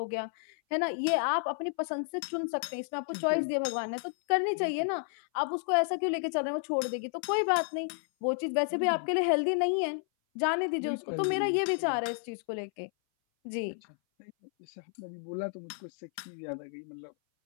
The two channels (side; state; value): right; silent; 57 dB below the other